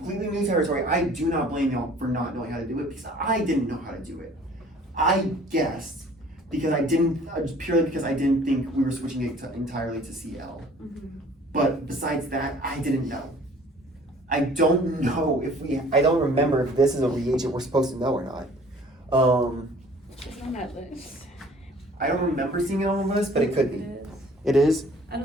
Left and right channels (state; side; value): normal; both; correlation 0.52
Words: new territory. I do not blame y'all for not knowing how to do it, because I didn't know how to do it. I guessed because purely because I didn't think we were switching it entirely to Cl. But besides that, I didn't know. I don't know I don't remember if this is a reagent we're supposed to know or not. It's on that list. I don't remember seeing it on the list, but it could be. It is. It is? I